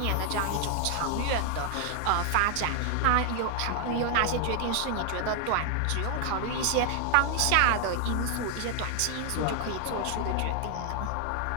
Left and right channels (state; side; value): different; both; correlation 0.00